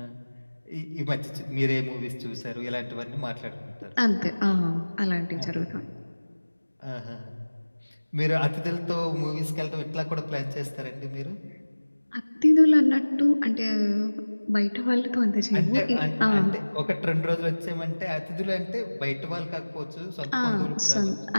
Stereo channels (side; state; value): both; inverted; correlation -1.00